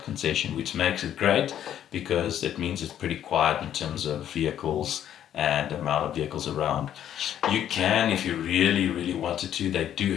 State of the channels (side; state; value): right; quieter; 10.6 dB